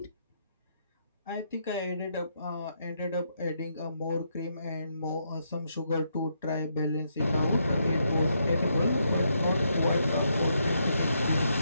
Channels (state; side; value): inverted; both; correlation -0.78